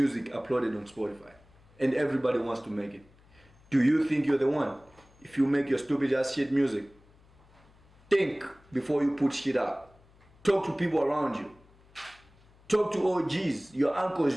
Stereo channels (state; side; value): noise; left; hum, 28 dB below the sound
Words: uploaded on Spotify. And everybody wants to make it. Do you think you're the one? If you make your stupid ass shit music, think before you put shit out. Talk to people around you. Talk to OGs, your